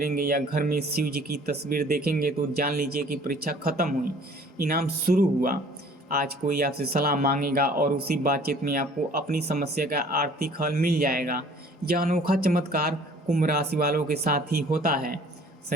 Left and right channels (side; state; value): both; normal; correlation 0.53